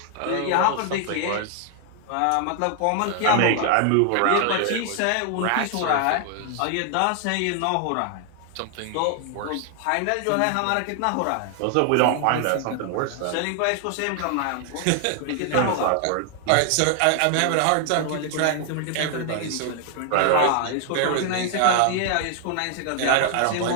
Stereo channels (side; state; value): both; different; correlation 0.00